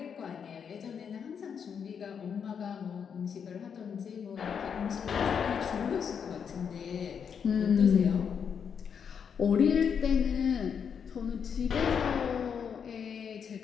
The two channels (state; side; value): quieter; right; 7.1 dB